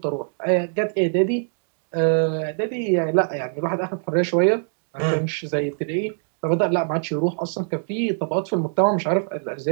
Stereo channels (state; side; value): silent; left; digital silence